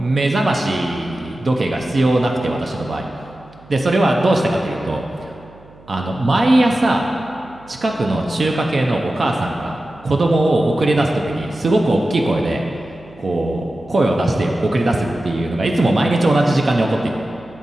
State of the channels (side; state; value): right; noise; hum, 25 dB below the sound